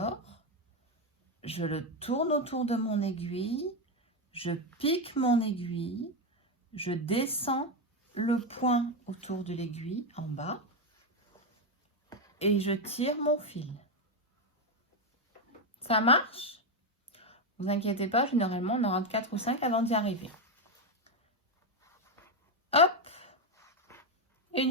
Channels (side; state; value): both; normal; correlation 0.08